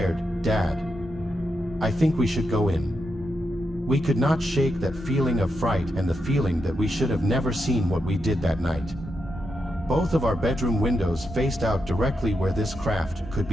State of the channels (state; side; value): normal; both; correlation 0.85